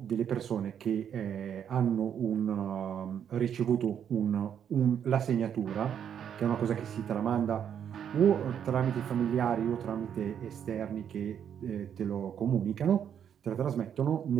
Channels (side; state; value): left; quieter; 8.7 dB